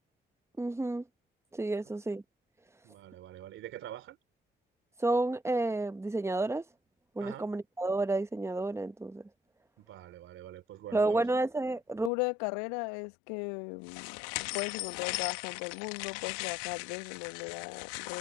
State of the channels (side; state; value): right; drops out; at 12.1 s